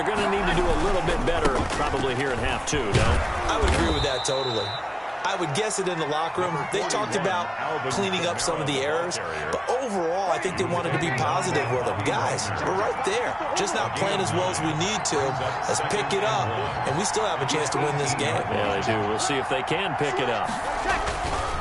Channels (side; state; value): both; identical; correlation 1.00